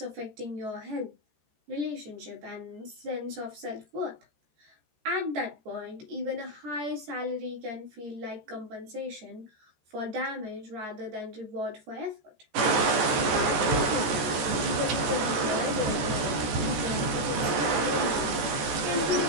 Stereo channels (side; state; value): left; late; 13 ms